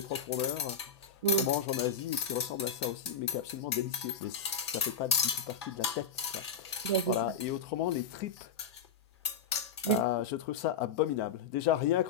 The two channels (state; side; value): quieter; right; 5.4 dB